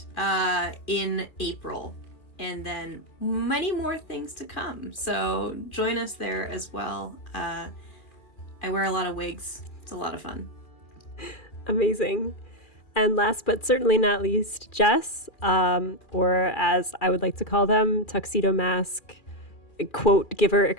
in April. And then many more things to come. So join us there as well. I wear a lot of wigs. It's a lot of fun. Amazing. And last but certainly not least, Jess, or as I would like to call them, Tuxedo Mask, quote giver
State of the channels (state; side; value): late; right; 2.4 ms